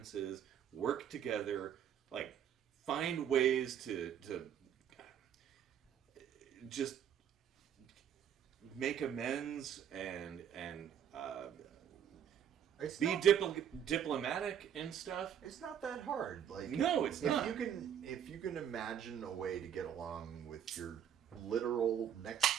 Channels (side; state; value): left; quieter; 9.2 dB